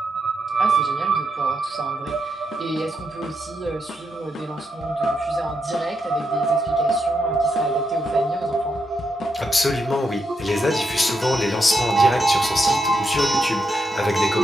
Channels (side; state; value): both; normal; correlation 0.83